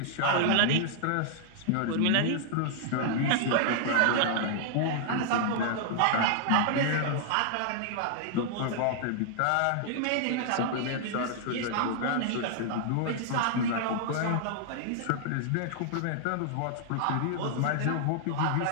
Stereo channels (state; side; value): different; both; correlation -0.01